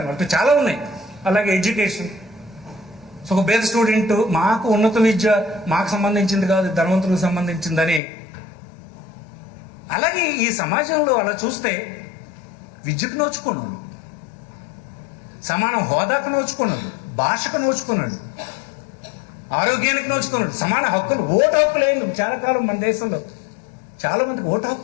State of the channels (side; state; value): right; drops out; at 8.0 s